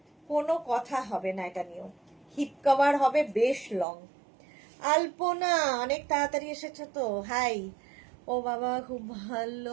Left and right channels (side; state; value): left; drops out; at 3.9 s